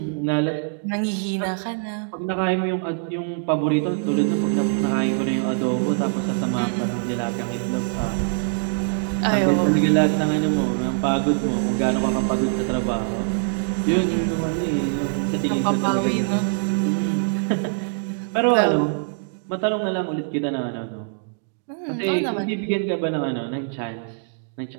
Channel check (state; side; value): silent; left; 63 dB below the other